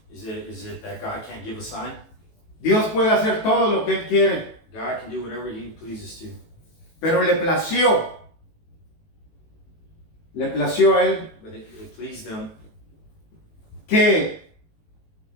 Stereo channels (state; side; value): late; right; 18 ms